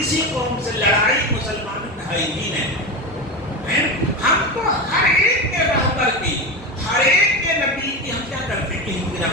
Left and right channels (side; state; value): both; normal; correlation 0.20